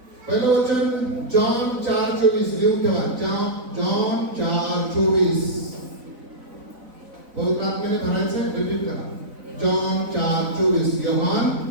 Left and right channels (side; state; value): left; late; 4.0 ms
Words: पहिलं वचन जॉन 4:24 लिहून ठेवा. जॉन 4:24 पवित्र आत्म्याने भरायचं, रिपीट करा. जॉन 4:24. योहान